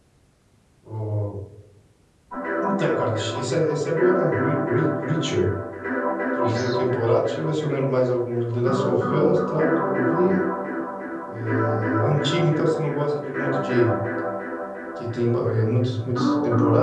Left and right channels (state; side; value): identical; both; correlation 1.00